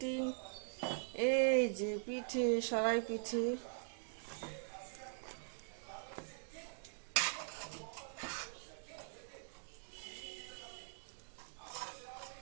এই যে পিঠে, সরাই পিঠে।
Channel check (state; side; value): silent; left; digital silence